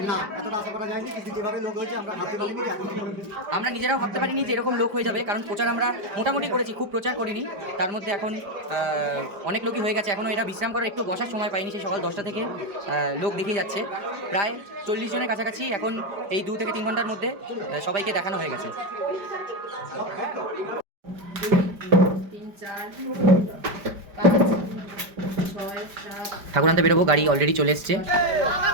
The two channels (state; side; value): late; left; 5.0 ms